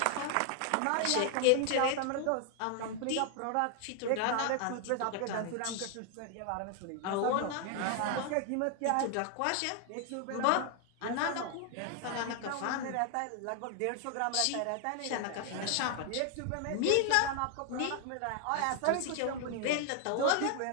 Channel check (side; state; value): both; different; correlation 0.00